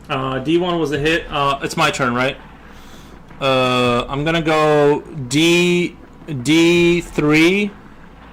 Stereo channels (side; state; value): both; identical; correlation 1.00